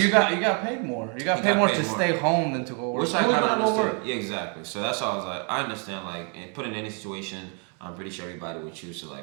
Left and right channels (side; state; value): left; quieter; 38.2 dB